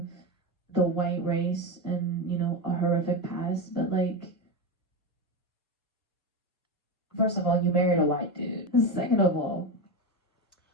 the white race and, a horrific past, but like, first of all, you married a white dude. Second of all,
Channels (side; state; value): both; normal; correlation 0.16